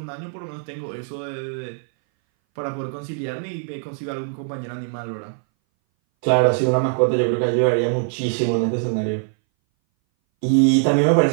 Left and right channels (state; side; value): silent; left; 60 dB below the other